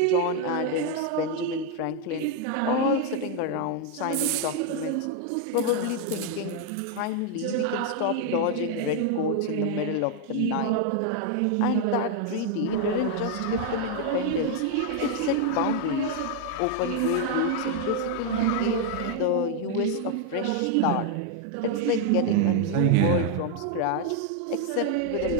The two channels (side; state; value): both; different; correlation 0.00